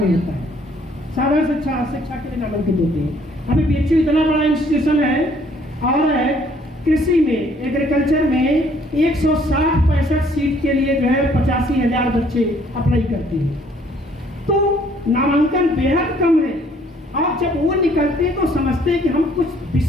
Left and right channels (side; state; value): both; normal; correlation 0.62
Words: होता है। साधारण शिक्षा के लिए नामांकित होते हैं। अभी BHU इतना बड़ा इंस्टीट्यूशन है और कृषि में, एग्रीकल्चर में 160-65 सीट के लिए जो है 85,000 बच्चे अप्लाई करते हैं। तो नामांकन बेहद कम है, और जब वो निकलते हैं तो समझते हैं कि हम कुछ